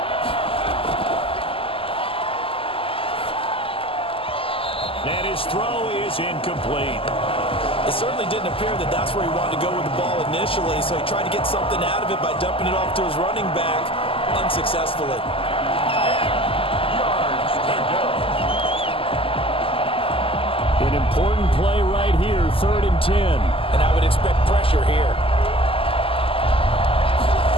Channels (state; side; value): late; right; 0.26 ms